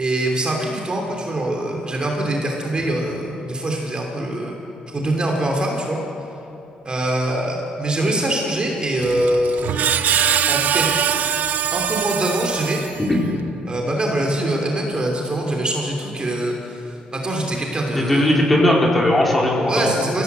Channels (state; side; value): normal; both; correlation 0.66